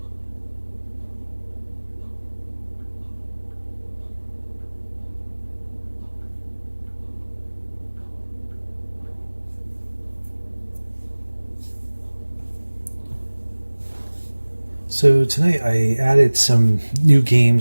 So tonight I added some new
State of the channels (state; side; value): inverted; both; correlation -1.00